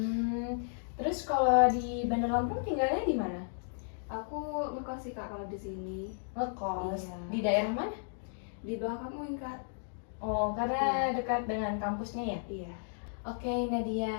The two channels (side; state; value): right; silent; digital silence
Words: Terus kalau di Bandar Lampung tinggalnya di mana? Aku ngekos sih, Kak, kalau di sini. Ngekos. Iya. Di daerah mana? Di belakang UIN, Kak. Oh, karena dekat dengan kampusnya ya? Iya. Oke,